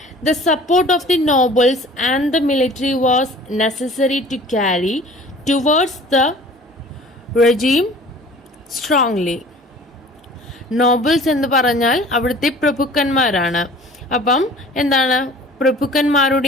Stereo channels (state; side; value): normal; both; correlation 0.47